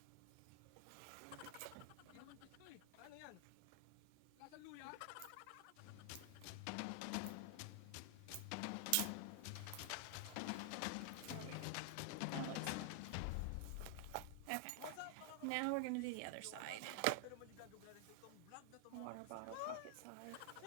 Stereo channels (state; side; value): different; both; correlation 0.00